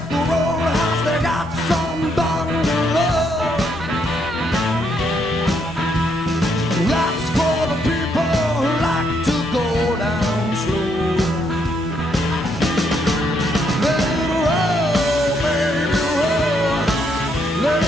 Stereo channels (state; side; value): normal; both; correlation 0.74